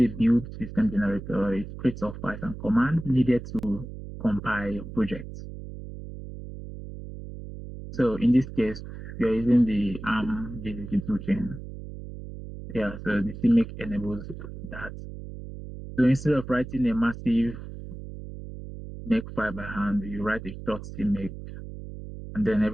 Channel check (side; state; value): right; noise; hum, 11 dB below the sound